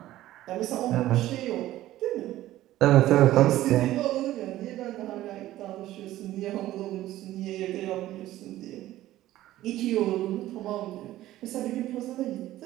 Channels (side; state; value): left; quieter; 14.8 dB